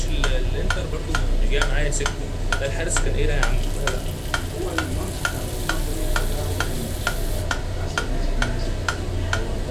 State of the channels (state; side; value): identical; both; correlation 1.00